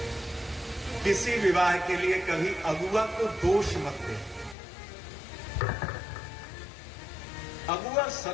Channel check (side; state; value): right; drops out; at 4.5 s